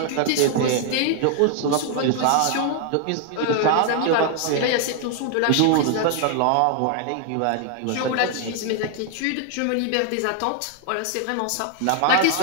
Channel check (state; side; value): different; both; correlation 0.00